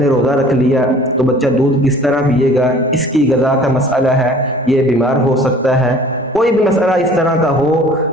روزہ رکھ لیا تو بچہ دودھ کس طرح پیے گا، اس کی غذا کا مسئلہ ہے، یہ بیمار ہو سکتا ہے، کوئی بھی مسئلہ اس طرح کا ہو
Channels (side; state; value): both; normal; correlation 0.49